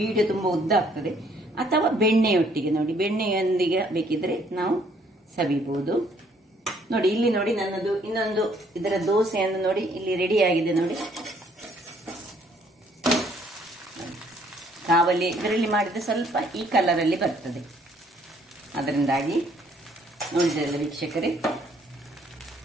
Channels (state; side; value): normal; both; correlation 0.64